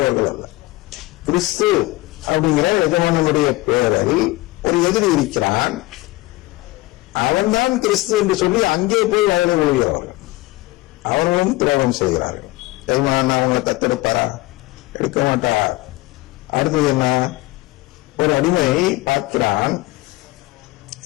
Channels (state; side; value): quieter; right; 20.2 dB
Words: அல்ல. கிறிஸ்து அப்படிங்கிற எஜமானனுடைய பெயரில் ஒரு எதிரி இருக்கிறான், அவன்தான் கிறிஸ்து என்று சொல்லி அங்கே போய் வயலை விழுகிறவர்கள். அவர்களும் துரோகம் செய்கிறார்கள். எஜமானன் அவங்களை தத்தெடுப்பாரா? எடுக்க மாட்டார். அடுத்தது என்ன? ஒரு அடிமை பார்க்கிறான்,